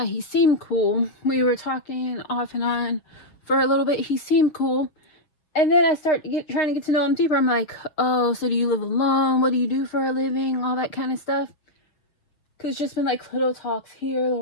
He seemed cool. We were talking off and on for a little bit. He seemed cool. And then I start trying to get to know him deeper. I'm like, oh, so do you live alone? What do you do for a living? All that kind of stuff. Because it's just been like little talks here,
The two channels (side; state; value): right; late; 7.0 ms